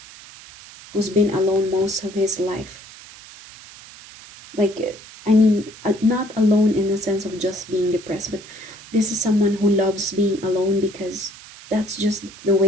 who's been alone most of his life. Like, I mean, not alone in the sense of just being depressed, but this is someone who loves being alone because that's just the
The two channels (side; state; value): right; noise; hiss, 19 dB below the sound